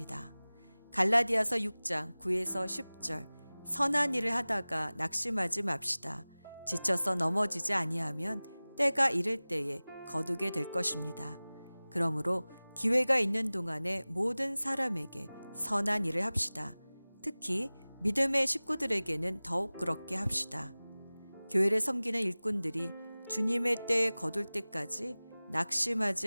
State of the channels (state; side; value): inverted; both; correlation -0.99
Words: 갈라디아서 6장 9에서 10절 선한 일을 하다가 낙심하지 맙시다. 지쳐서 넘어지지 아니하면 때가 이를 때에 거두게 될 것입니다. 그러므로 기회가 있는 동안에 모든 사람에게 선한 일을 합시다. 특히 믿음의 식구들에게는 더욱 그렇게 합시다. 교회를 섬기는 일꾼들이 주님의 때에 거둘 때까지